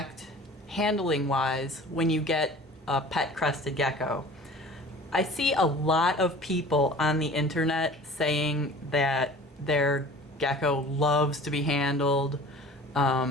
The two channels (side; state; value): both; normal; correlation 0.43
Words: handling wise when you get a pet crested gecko. I see a lot of people on the internet saying that their gecko loves to be handled,